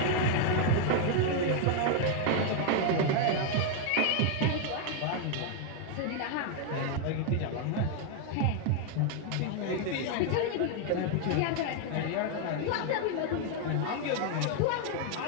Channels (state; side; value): different; both; correlation 0.00